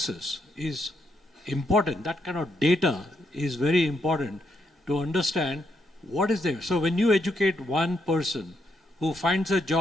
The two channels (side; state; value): both; normal; correlation 0.78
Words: is important. That kind of data is very important to understand what is there. So when you educate one person who finds a